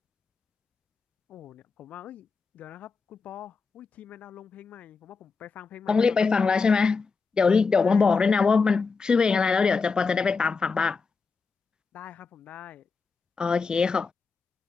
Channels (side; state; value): right; quieter; 4.7 dB